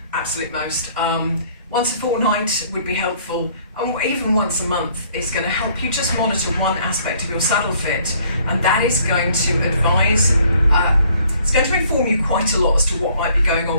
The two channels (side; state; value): both; inverted; correlation -0.61